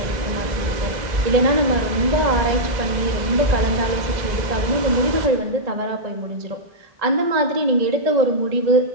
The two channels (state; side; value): late; left; 1.9 ms